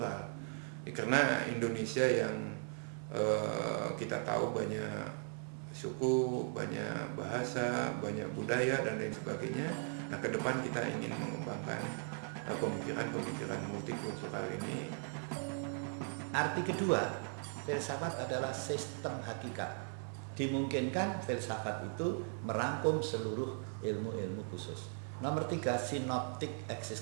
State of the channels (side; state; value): left; silent; 52 dB below the other